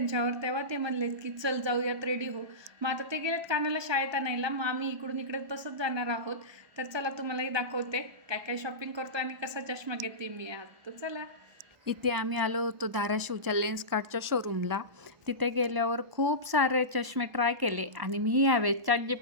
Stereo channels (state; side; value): late; left; 1.2 ms